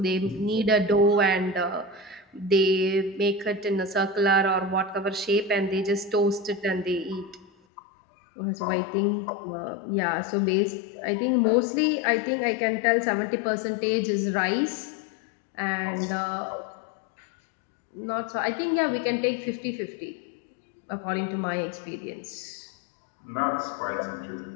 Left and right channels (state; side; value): drops out; right; at 7.5 s